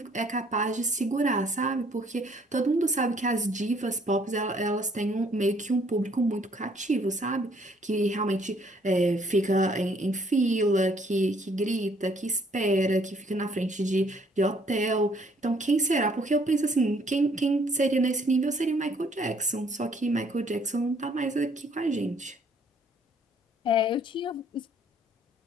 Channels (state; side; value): normal; both; correlation 0.63